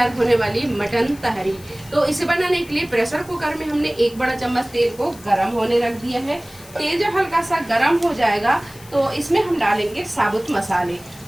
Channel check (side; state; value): left; noise; hiss, 21 dB below the sound